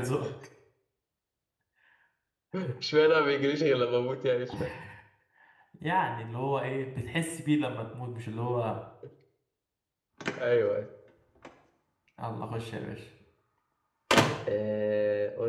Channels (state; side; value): identical; both; correlation 1.00